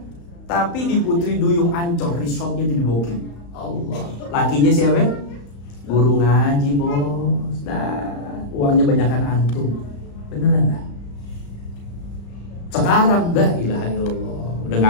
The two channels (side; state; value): right; late; 35 ms